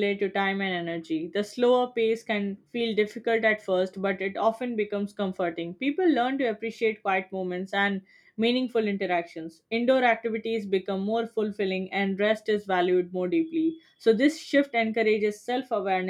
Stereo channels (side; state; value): both; identical; correlation 1.00